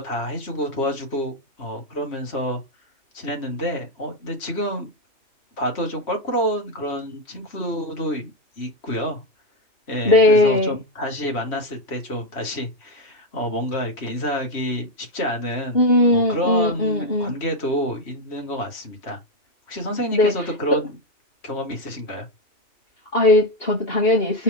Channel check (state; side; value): late; right; 3.1 ms